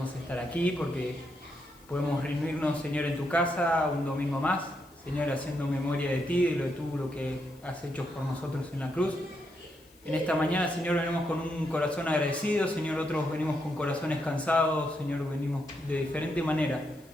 estar aquí, porque podemos reunirnos, Señor, en tu casa un domingo más, Señor, haciendo memoria de ti, de lo que has hecho por nosotros en la cruz. En esta mañana, Señor, venimos con un corazón agradecido, Señor, otros venimos con corazones cansados, Señor, venimos de diferente manera.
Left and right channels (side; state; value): left; noise; hiss, 29 dB below the sound